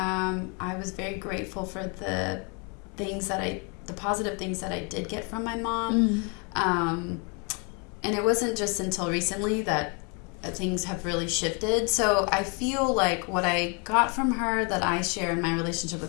was very grateful for the positive things that I did get from my mom. And it wasn't just until recently that things have really shifted. So I feel like what I got from her that I share in my relationship with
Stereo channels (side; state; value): right; quieter; 34.3 dB